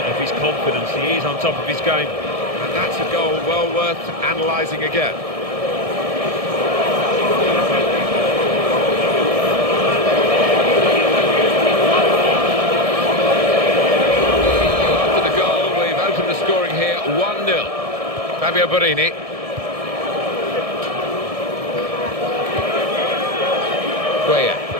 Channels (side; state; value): left; late; 1.7 ms